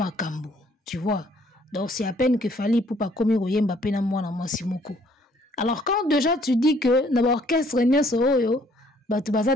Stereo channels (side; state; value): both; normal; correlation 0.63